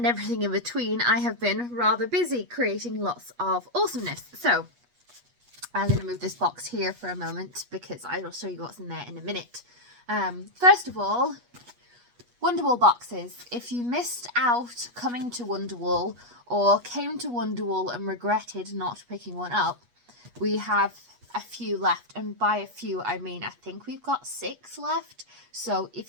everything in between, I have been rather busy creating lots of awesomeness. So I'm going to move this box here for a moment because I will show you what's in there in a minute. First of all, Wonderwool boxes. If you missed out coming to Wonderwool or came to Wonderwool and regretted not picking one up, we have a few left, and by a few I mean I think we've got 6 left. So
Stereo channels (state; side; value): late; left; 8.3 ms